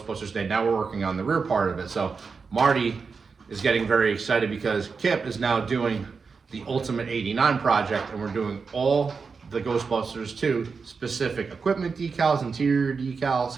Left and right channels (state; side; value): quieter; left; 5.1 dB